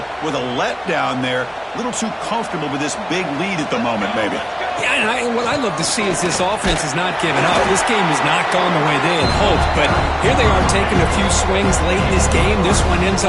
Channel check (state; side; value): identical; both; correlation 1.00